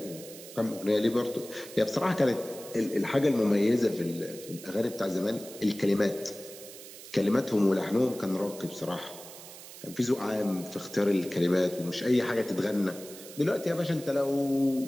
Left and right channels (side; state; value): right; noise; hiss, 15 dB below the sound